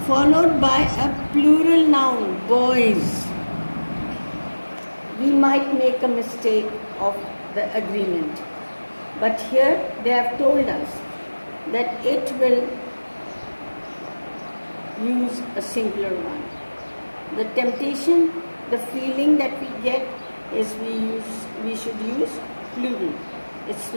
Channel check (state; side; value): inverted; both; correlation -1.00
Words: followed by a plural noun, boys, we might make a mistake of the agreement. But here they have told us that it will use a singular one. The temptation, the feeling that we get is we should use plural. It's